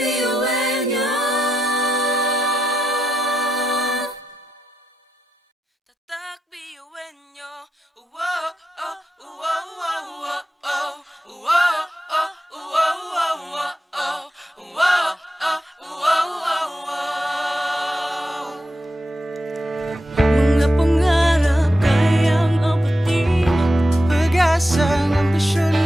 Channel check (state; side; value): normal; both; correlation 0.87